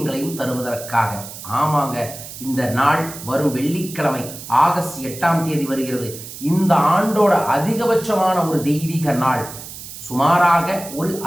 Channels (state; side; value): noise; right; hiss, 12 dB below the sound